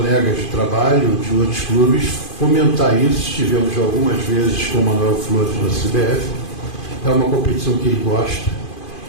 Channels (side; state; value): right; late; 2.5 ms